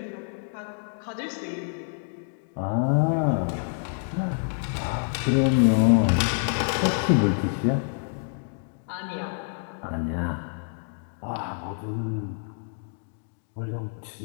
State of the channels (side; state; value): right; silent; 59 dB below the other